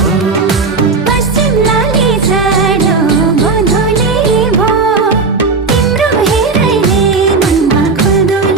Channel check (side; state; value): left; quieter; 4.3 dB